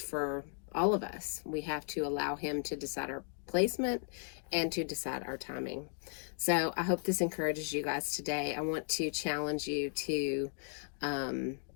all of us. We have to allow him to decide our placement and to decide our timing. So I hope this encourages you guys today. I want to challenge you to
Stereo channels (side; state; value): right; silent; 54 dB below the other